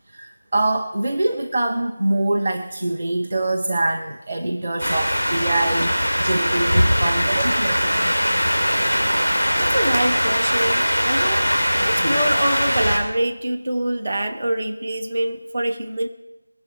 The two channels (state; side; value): inverted; both; correlation -0.97